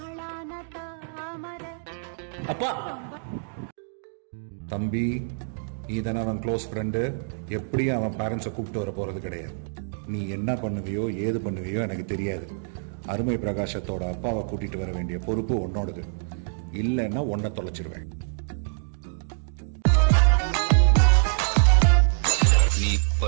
அப்பா, தம்பி, நீ தானே அவன் க்ளோஸ் ஃப்ரெண்டு. எப்படியும் அவன் பேரண்ட்ஸை கூப்பிட்டு வர போறது கிடையாது. நீ என்ன பண்ணுவியோ ஏது பண்ணுவியோ எனக்கு தெரியாது. அருமை பிரகாசத்தோட அப்பாவை கூட்டிட்டு வர வேண்டிய பொறுப்பு உன்னோடது. இல்லைன்னா உன்னை தொலைச்சிருவேன். நீ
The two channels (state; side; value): silent; left; digital silence